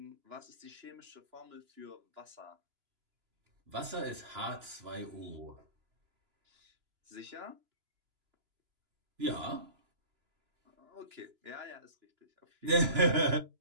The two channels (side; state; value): left; late; 2.9 ms